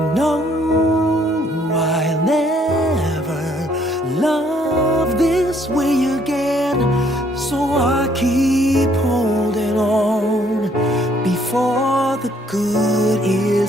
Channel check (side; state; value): both; normal; correlation 0.66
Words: know I'll never love this way again, so I keep holding on before the good